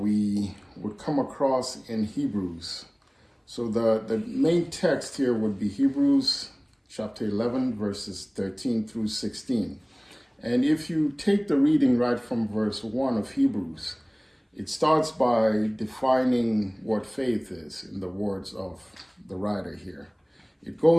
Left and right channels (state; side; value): identical; both; correlation 1.00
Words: would come across in Hebrews. So the main text here would be Hebrews chapter 11, verses 13 through 16. And if you take the reading right from verse 1 of Hebrews, it starts by defining what faith is in the words of the writer here. It